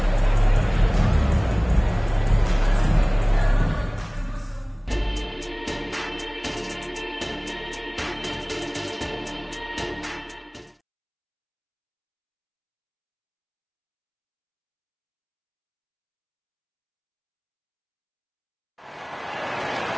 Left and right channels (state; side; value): identical; both; correlation 1.00